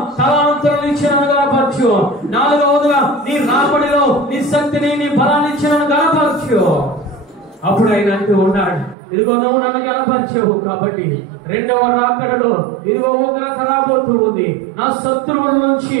తలాంతులను ఇచ్చి నన్ను గణపరచు. నాలుగవదిగా నీ రాబడిలో నీ శక్తిని నీ బలాన్ని ఇచ్చి నన్ను గణపరచు. అప్పుడు ఆయన అంటూ ఉన్నాడు, ఇదిగో నువ్వు నన్ను గణపరిచావు కాబట్టి రెండవ రాకడలో ఇదిగో ఉగ్రత రాబోతూ ఉంది, నా శత్రువుల నుంచి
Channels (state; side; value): drops out; left; at 9.0 s